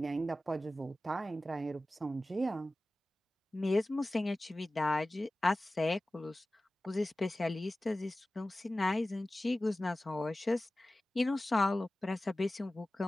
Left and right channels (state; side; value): normal; both; correlation 0.96